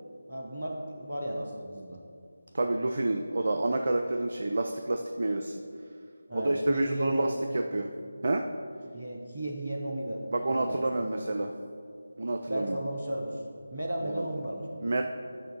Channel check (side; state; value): both; inverted; correlation -0.96